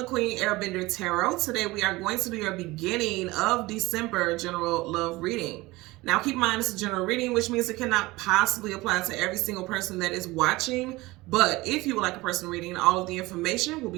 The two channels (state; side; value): quieter; left; 20.6 dB